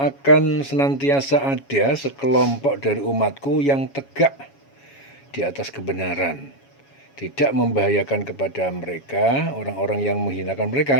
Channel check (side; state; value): right; late; 7.2 ms